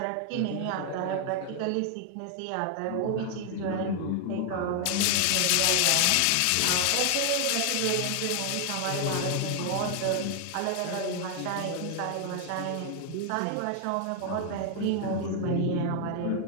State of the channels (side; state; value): both; different; correlation 0.00